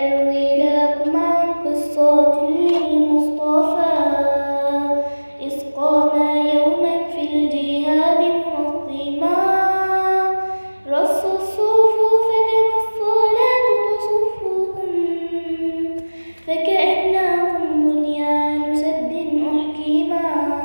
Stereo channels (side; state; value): both; inverted; correlation -1.00